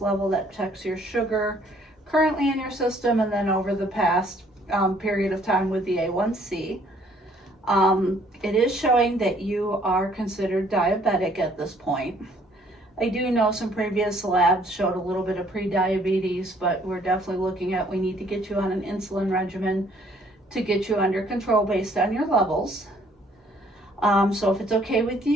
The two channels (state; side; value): normal; both; correlation 0.62